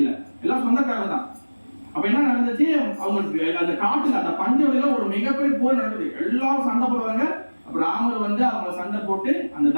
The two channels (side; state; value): both; inverted; correlation -1.00